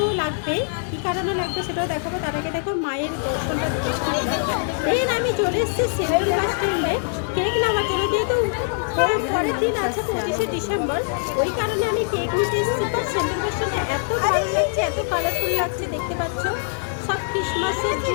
লাগবে, কী কারণে লাগবে সেটাও দেখাবো। তার আগে দেখো মায়ের দর্শনটা দেখতে পেলাম। দেন আমি চলে এসেছি সেন্ট্রাল বাস স্ট্যান্ডে কেক নেওয়ার জন্য, যেহেতু পরের দিন আছে 25শে ডিসেম্বর, ওই কারণে আমি কেক নিতে এসেছি। বাট সেন্ট্রাল বাস স্ট্যান্ডে এত ভালো লাগছে, এত কালারফুল লাগছে, দেখতে পাচ্ছ সব ক্রিসমাসের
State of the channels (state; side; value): silent; right; digital silence